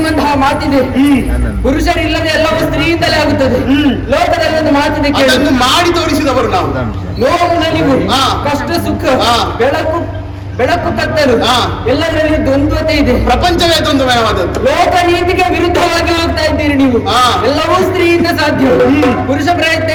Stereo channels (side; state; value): both; identical; correlation 1.00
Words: ಮಾತಿದೆ. ಪುರುಷರಿಲ್ಲದೆ ಎಲ್ಲವೂ ಸ್ತ್ರೀಯಿಂದಲೇ ಆಗುತ್ತದೆ. ಲೋಕದಲ್ಲಿ ಒಂದು ಮಾತಿದೆ, ಮಾಡಿ ತೋರಿಸಿದವರು ನಾವು. ನೋವು ನಲಿವು, ಕಷ್ಟ ಸುಖ, ಬೆಳಕು ಕತ್ತಲು ಎಲ್ಲದರಲ್ಲಿ ದ್ವಂದ್ವತೆ ಇದೆ. ಪ್ರಪಂಚವೇ ದ್ವಂದ್ವಮಯವಾದದ್ದು. ಲೋಕ ನೀತಿಗೆ ವಿರುದ್ಧವಾಗಿ ಹೋಗ್ತಾ ಇದ್ದೀರಿ ನೀವು. ಎಲ್ಲವೂ ಸ್ತ್ರೀಯಿಂದ ಸಾಧ್ಯ. ಪುರುಷ ಪ್ರಯತ್ನ